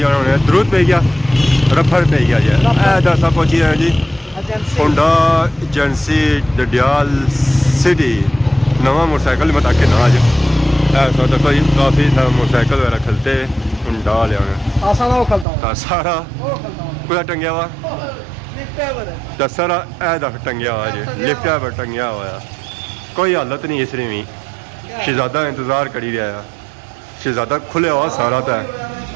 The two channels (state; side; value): drops out; left; at 15.5 s